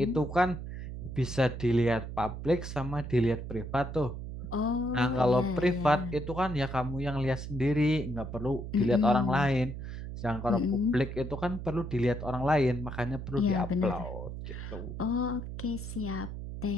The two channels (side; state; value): right; noise; hum, 8 dB below the sound